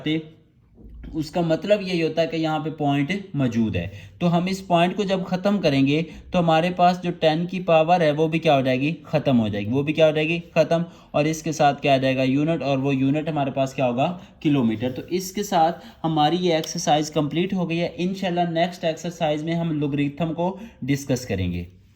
उसका मतलब यही होता है कि यहाँ पे पॉइंट मौजूद है। तो हम इस पॉइंट को जब ख़त्म करेंगे तो हमारे पास जो 10 की पावर है वो भी क्या हो जाएगी, ख़त्म हो जाएगी, वो भी क्या हो जाएगी, ख़त्म। और इसके साथ क्या आ जाएगा, यूनिट, और वो यूनिट हमारे पास क्या होगा, किलोमीटर। तो इसके साथ हमारी ये एक्सरसाइज कंप्लीट हो गई है। इंशाल्लाह नेक्स्ट एक्सरसाइज में हम लोगरिथम को डिस्कस करेंगे।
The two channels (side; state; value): both; identical; correlation 1.00